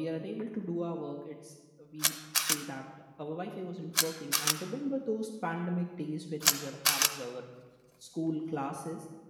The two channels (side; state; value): both; identical; correlation 1.00